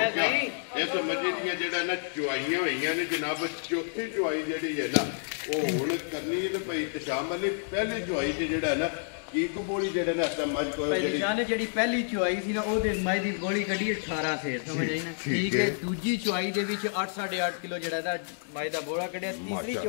ਗਿਆ। ਇਸ ਮੱਝੀ ਦੀਆਂ ਜਿਹੜਾ ਨਾ ਚੁਆਈਆਂ ਹੋਈਆਂ ਨੇ ਜਨਾਬ। ਚੌਥੀ ਚੁਆਈ ਜਿਹੜੀ ਹੈ ਨਾ ਉਹ ਹੁਣ ਕਰਨੀ ਹੈ ਤੇ ਭਾਈ ਤਸ਼ਾਮ ਅਲੀ ਪਹਿਲੀ ਚੁਆਈ ਤੇ ਜਿਹੜਾ ਹੈ ਨਾ ਕੀ ਕਬੂਲੀ ਜਿਹੜਾ ਨਾ ਇਸ ਮੱਝ ਕੋਲ ਭਾਈ ਜਿਹੜੀ ਦਿਸ਼ਾਨ ਨੇ ਜਿਹੜੀ ਪਹਿਲੀ ਚੁਆਈ ਸੀ ਨਾ ਉਹਦੇ ਮਾਈ ਦੀ ਗੋਲੀ ਕੱਢੀ 18 ਸੇਰ ਸਮਝ ਆਈ ਨਾ ਠੀਕ ਹੈ। ਦੂਜੀ ਚੁਆਈ ਦੇ ਵਿੱਚ 8.5 ਕਿਲੋ ਜਿਹੜਾ ਦਾ ਮਾਈ ਦਾ ਬੋੜਾ ਕੱਢਿਆ। ਤੀਸਰੀ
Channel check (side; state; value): right; silent; digital silence